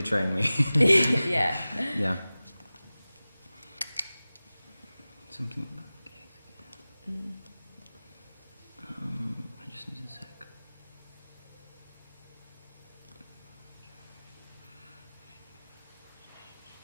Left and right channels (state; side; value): inverted; both; correlation -0.97